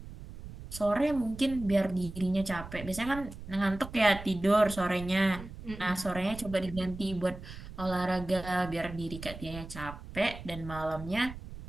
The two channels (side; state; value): right; noise; rumble, 12 dB below the sound